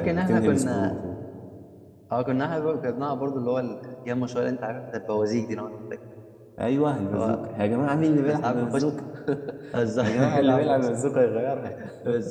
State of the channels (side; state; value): both; identical; correlation 1.00